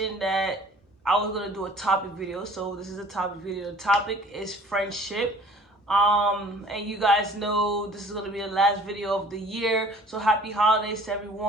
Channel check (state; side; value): normal; both; correlation 0.50